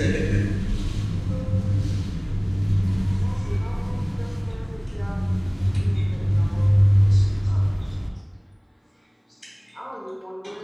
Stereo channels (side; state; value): both; identical; correlation 1.00